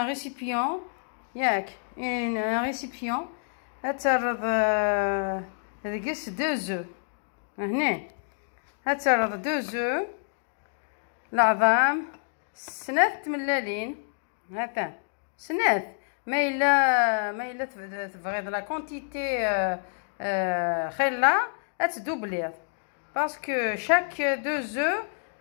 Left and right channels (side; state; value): right; silent; digital silence